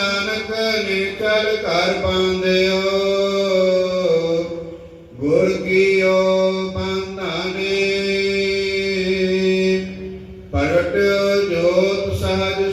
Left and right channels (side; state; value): both; identical; correlation 1.00